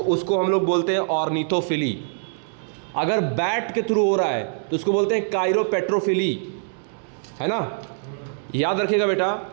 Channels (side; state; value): left; silent; digital silence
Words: उसको हम लोग बोलते हैं ऑर्निथोफिली। अगर बैट के थ्रू हो रहा है तो उसको बोलते हैं काइरोपेट्रोफिली, है ना। याद रखिएगा बेटा